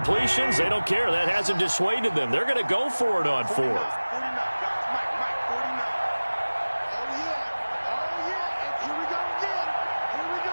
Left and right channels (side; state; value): both; inverted; correlation -1.00